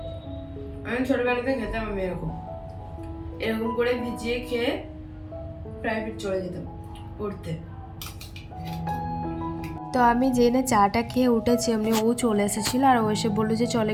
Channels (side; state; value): both; identical; correlation 1.00